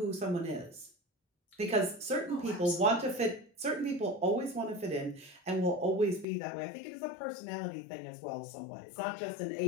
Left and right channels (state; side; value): drops out; right; at 6.2 s